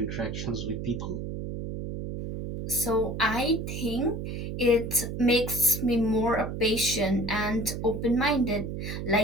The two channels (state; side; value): noise; right; hum, 5 dB below the sound